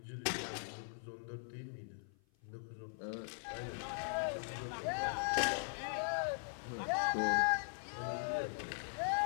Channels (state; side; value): silent; right; 51 dB below the other